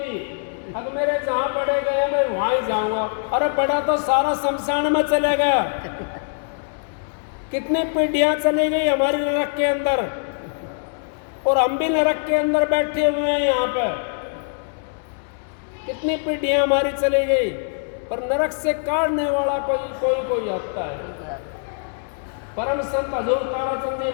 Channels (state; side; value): silent; right; digital silence